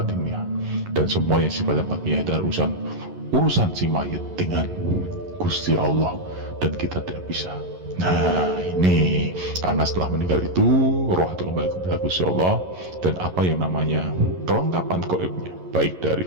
dan semua yang sifatnya batinnya adalah urusan si mayit dengan Gusti Allah, dan kita tidak bisa. Nah, ini karena setelah meninggal itu roh itu kembali kepada Gusti Allah, dan apa yang namanya kelengkapan gaibnya, baik dari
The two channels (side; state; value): left; late; 11 ms